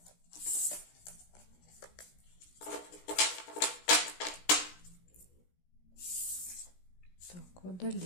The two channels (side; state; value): right; late; 17 ms